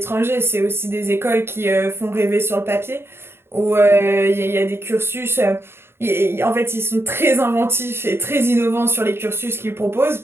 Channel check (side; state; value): left; late; 0.11 ms